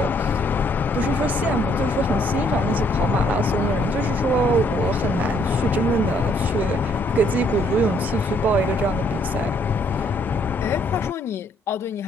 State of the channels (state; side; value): normal; both; correlation 0.67